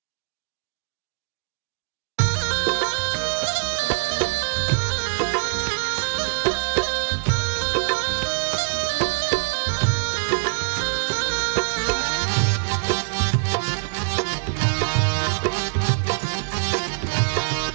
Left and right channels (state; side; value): silent; left; digital silence